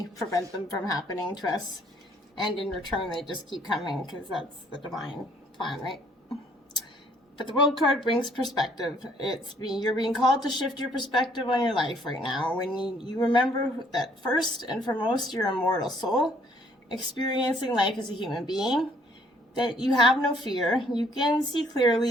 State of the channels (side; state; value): both; normal; correlation 0.63